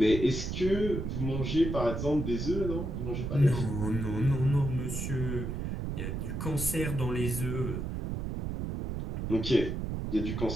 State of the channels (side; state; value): right; noise; rumble, 3 dB below the sound